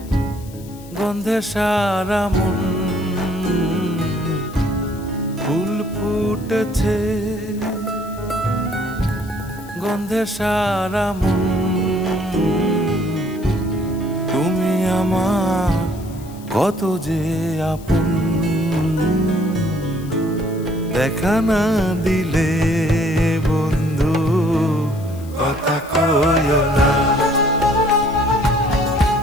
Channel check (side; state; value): left; noise; hiss, 22 dB below the sound